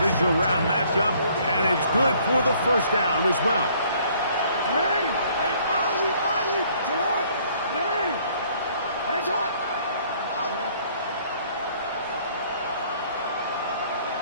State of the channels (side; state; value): both; inverted; correlation -0.61